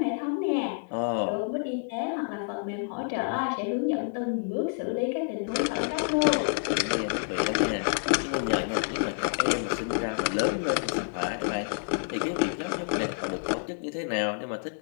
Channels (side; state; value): right; silent; digital silence